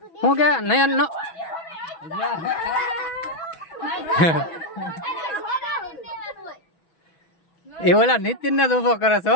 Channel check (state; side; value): late; right; 6.1 ms